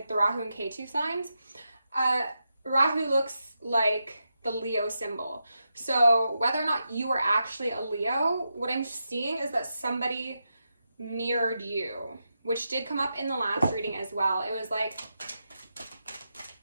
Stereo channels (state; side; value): inverted; both; correlation -0.87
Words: the Rahu and Ketu signs, Rahu looks like the Leo symbol. So whether or not you are actually a Leo, what I'm seeing is that somebody mirrored you, which did come up in the last reading as well. It was like